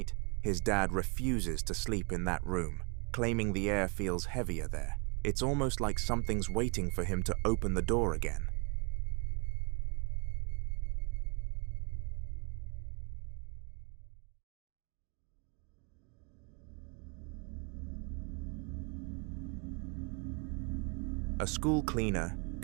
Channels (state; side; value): quieter; left; 34.5 dB